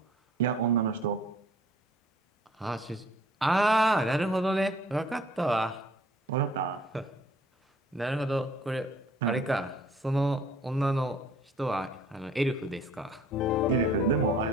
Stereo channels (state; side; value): normal; both; correlation 0.55